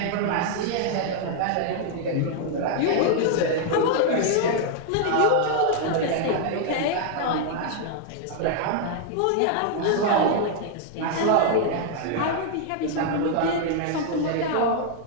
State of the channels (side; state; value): both; different; correlation 0.00